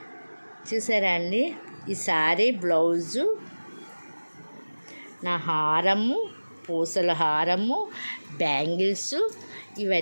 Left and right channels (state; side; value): inverted; both; correlation -1.00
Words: అండి, ఈ శారీ బ్లౌజు, నా హారము, పూసల హారము, బ్యాంగిల్స్,